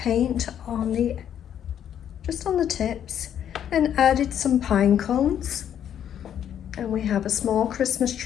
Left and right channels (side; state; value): right; quieter; 9.7 dB